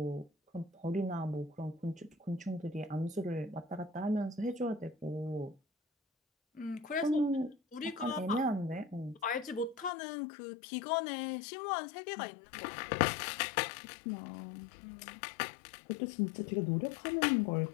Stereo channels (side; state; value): right; drops out; at 9.9 s